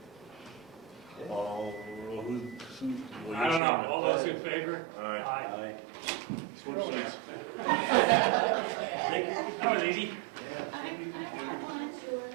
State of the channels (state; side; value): drops out; left; at 3.6 s